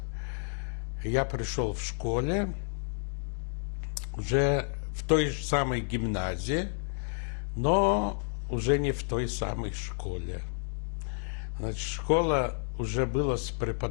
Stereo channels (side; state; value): right; silent; digital silence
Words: Я пришел в школе, уже в той же самой гимназии, но уже не в той самой школе. Значит, школа уже была с